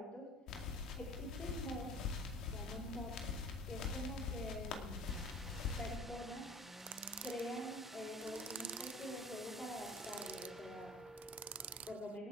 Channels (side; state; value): both; normal; correlation 0.45